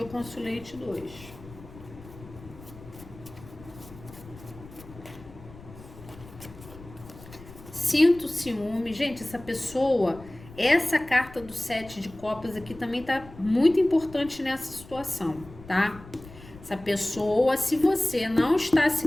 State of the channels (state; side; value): noise; left; rumble, 18 dB below the sound